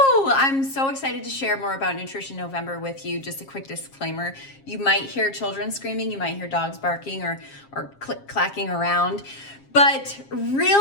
I'm so excited to share more about Nutrition November with you. Just a quick disclaimer. You might hear children screaming, you might hear dogs barking or click-clacking around. But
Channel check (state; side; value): late; right; 7.4 ms